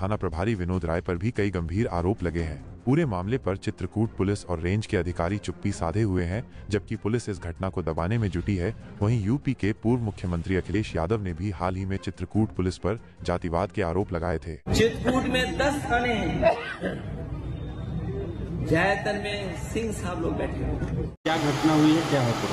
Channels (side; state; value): both; identical; correlation 1.00